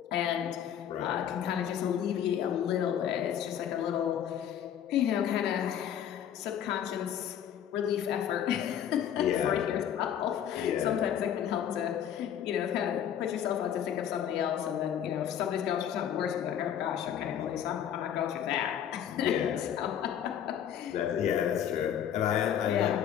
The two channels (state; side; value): quieter; right; 9.6 dB